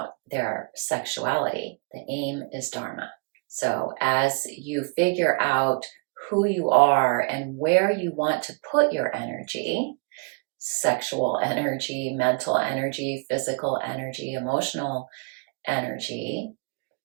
their sexuality. The aim is Dharma. So as you figure out who you are and where you want to put your energy, sexual energy, mental energy, physical energy, emotional energy,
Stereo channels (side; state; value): left; quieter; 33.7 dB